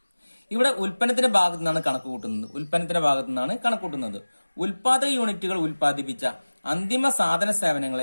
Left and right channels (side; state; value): both; inverted; correlation -1.00